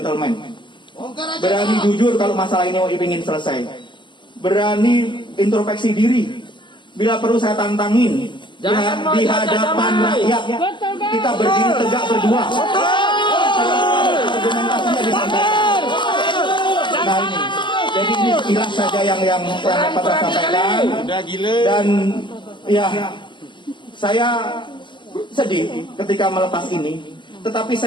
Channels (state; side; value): late; right; 0.23 ms